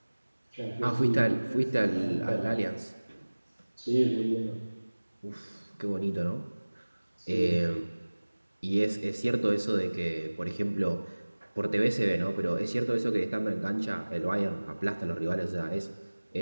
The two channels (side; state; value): both; inverted; correlation -1.00